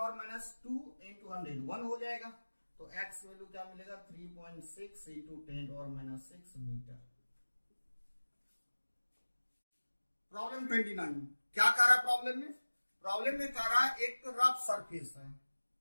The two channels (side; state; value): both; inverted; correlation -1.00